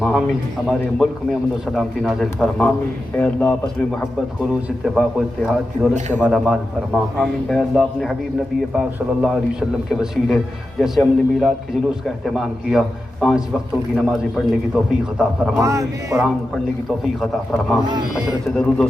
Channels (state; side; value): normal; both; correlation 0.91